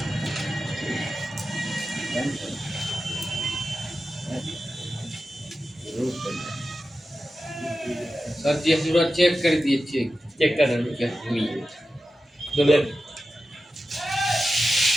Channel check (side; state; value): both; normal; correlation 0.92